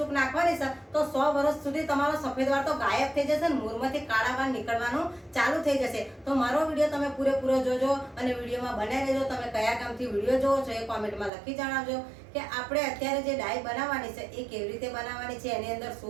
નાખવાની છે તો 100 વર્ષ સુધી તમારો સફેદ વાળ તો ગાયબ થઈ જશે ને મૂળમાંથી કાળા વાળ નીકળવાનું ચાલુ થઈ જશે। તો મારો વિડીયો તમે પૂરેપૂરો જોજો અને વિડીયોમાં બનાવી લેજો। તમે કયા કામથી વિડીયો જોવો છો એ કોમેન્ટમાં લખી જણાવજો કે આપણે અત્યારે જે ડાઈ બનાવવાની છે એ કેવી રીતે બનાવવાની છે, એની અંદર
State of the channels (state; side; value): drops out; left; at 11.3 s